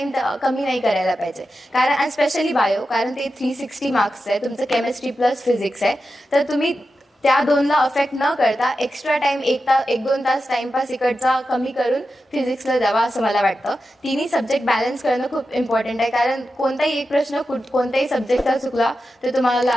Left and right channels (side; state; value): both; normal; correlation 0.90